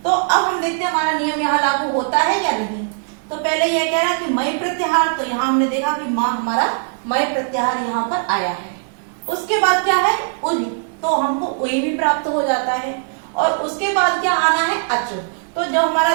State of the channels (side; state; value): left; silent; digital silence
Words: तो अब हम देखते हैं हमारा नियम यहाँ लागू होता है या नहीं। तो पहले यह कह रहा कि मैं प्रत्याहार, तो यहाँ हमने देखा कि माँ हमारा मैं प्रत्याहार यहाँ पर आया है। उसके बाद क्या है, उई, तो हमको उई भी प्राप्त हो जाता है। और उसके बाद क्या आना है, अच। तो जो